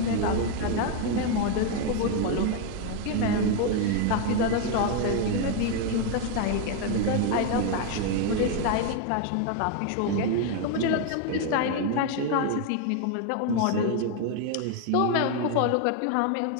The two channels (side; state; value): both; different; correlation 0.01